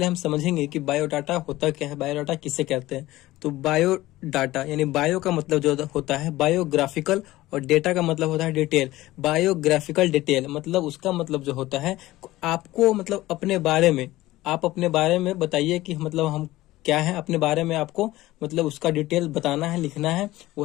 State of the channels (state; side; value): quieter; right; 17.2 dB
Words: हम समझेंगे कि बायोडाटा होता क्या है, बायोडाटा किसे कहते हैं। तो बायोडाटा यानी बायो का मतलब जो होता है बायोग्राफिकल और डेटा का मतलब होता है डिटेल। बायोग्राफिकल डिटेल मतलब उसका मतलब जो होता है आपको मतलब अपने बारे में, आप अपने बारे में बताइए कि मतलब हम क्या है, अपने बारे में आपको मतलब उसका डिटेल बताना है, लिखना है,